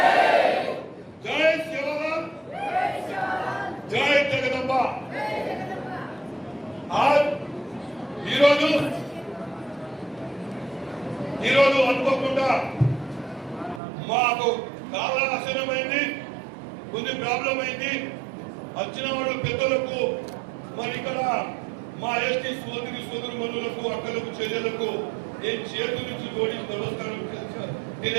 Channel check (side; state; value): left; drops out; at 13.8 s